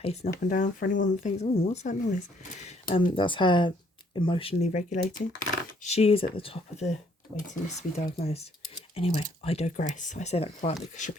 up and down. For anyone that thinks, oh, what's that noise? That's her emotionally regulating. She is at the top of the waiting list to be diagnosed. Anyway, I digress. I say that quietly because she'll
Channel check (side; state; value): both; normal; correlation 0.65